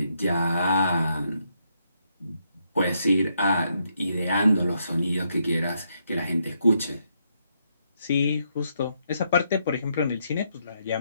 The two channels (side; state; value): both; inverted; correlation -0.77